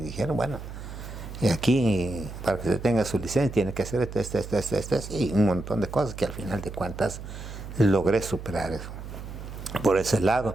dijeron, bueno, y aquí, para que se tenga su licencia, tiene que hacer esto, y un montón de cosas que al final de cuentas logré superar eso. Por ese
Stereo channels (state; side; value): noise; right; hum, 11 dB below the sound